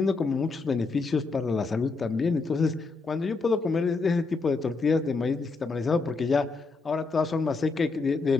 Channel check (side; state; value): right; quieter; 4.0 dB